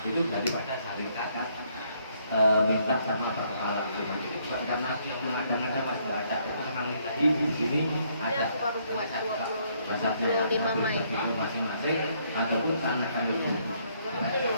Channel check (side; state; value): both; inverted; correlation -0.69